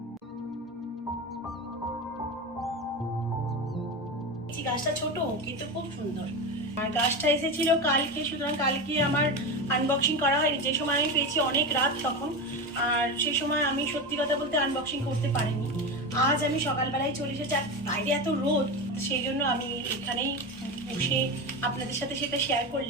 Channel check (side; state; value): both; normal; correlation 0.21